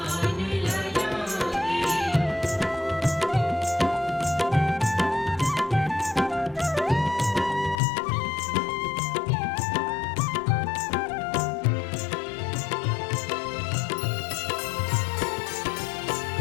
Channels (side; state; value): right; drops out; at 7.8 s